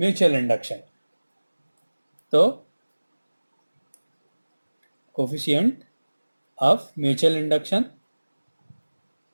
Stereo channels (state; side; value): inverted; both; correlation -1.00